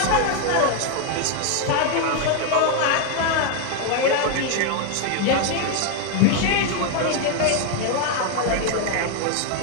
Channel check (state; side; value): different; both; correlation 0.01